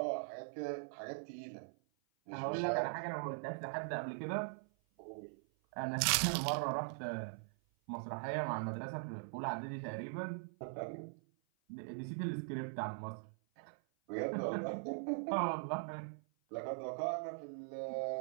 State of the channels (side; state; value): left; silent; 50 dB below the other